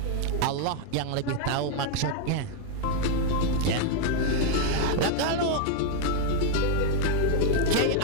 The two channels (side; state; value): both; different; correlation 0.01